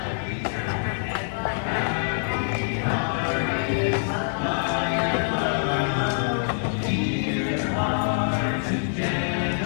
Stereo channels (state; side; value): silent; right; 62 dB below the other